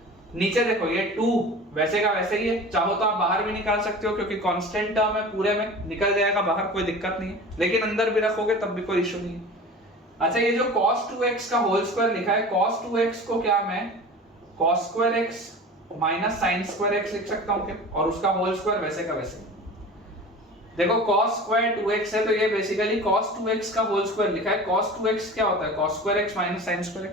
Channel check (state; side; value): normal; both; correlation 0.37